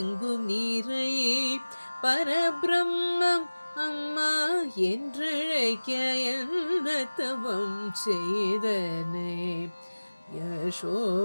நிறை பரபிரம்மம் அம்மா என்றழைக்க என்ன தவம் செய்தனே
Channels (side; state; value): both; inverted; correlation -1.00